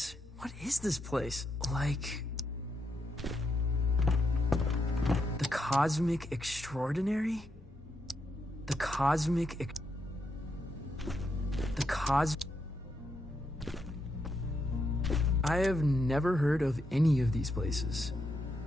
What is this place? Like... the Cosmic Extraordinary? The Cosmic... I have never heard of any of these places.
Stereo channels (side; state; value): both; normal; correlation 0.81